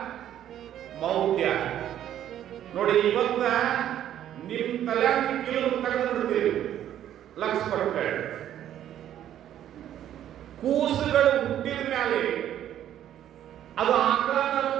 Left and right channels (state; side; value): quieter; left; 11.2 dB